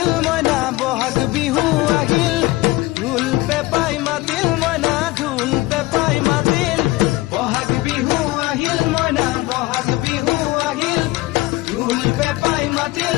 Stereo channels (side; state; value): right; quieter; 20.1 dB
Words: মইনা বহাগ বিহু আহিল ঢোল পেপাই মাতিল মইনা ঢোল পেপাই মাতিল বহাগ বিহু আহিল মইনা বহাগ বিহু আহিল ঢোল পেপাই মাতিল